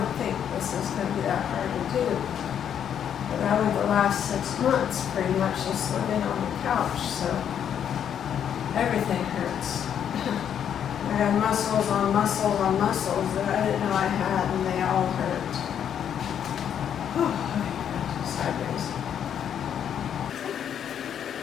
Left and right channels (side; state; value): right; quieter; 8.9 dB